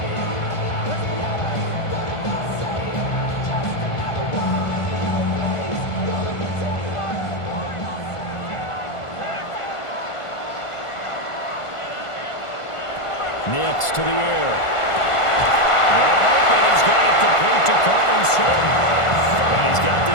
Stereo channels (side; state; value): right; late; 1.5 ms